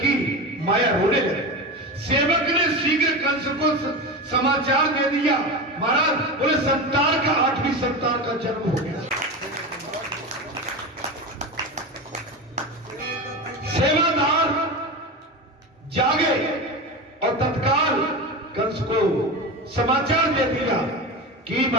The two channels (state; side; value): normal; both; correlation 0.23